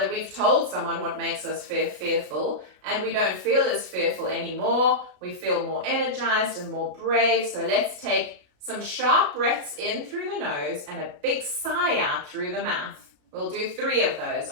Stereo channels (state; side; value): late; left; 33 ms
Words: we've told someone what makes us fearful, and we don't feel as fearful anymore. We feel more energized and more brave. So let's take some sharp breaths in through the nose and a big sigh out through the mouth. We'll do 3 of those.